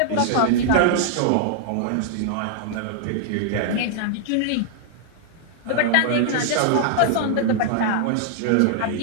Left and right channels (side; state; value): both; different; correlation -0.01